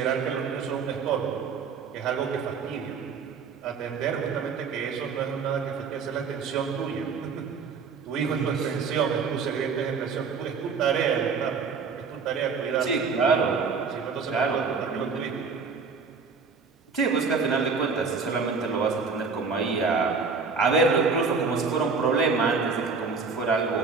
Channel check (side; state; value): left; quieter; 5.1 dB